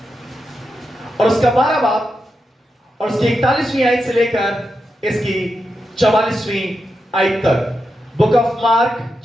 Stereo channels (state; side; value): normal; both; correlation 0.87